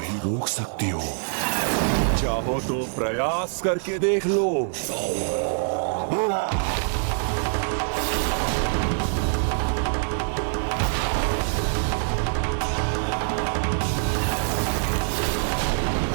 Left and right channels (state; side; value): silent; left; digital silence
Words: रोक सकती हो। चाहो तो प्रयास करके देख लो।